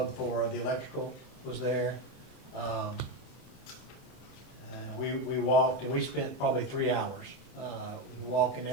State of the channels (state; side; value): late; right; 30 ms